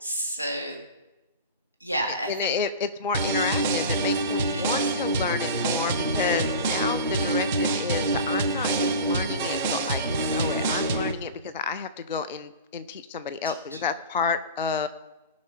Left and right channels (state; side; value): inverted; both; correlation -0.33